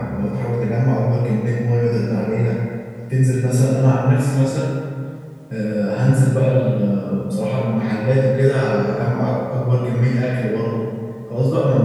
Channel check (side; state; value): both; identical; correlation 1.00